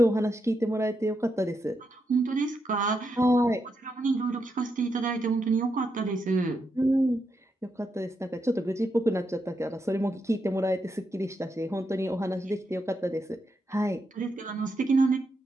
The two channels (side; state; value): both; normal; correlation 0.83